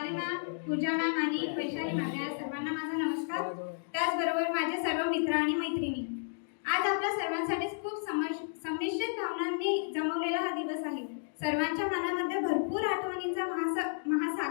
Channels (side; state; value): right; silent; digital silence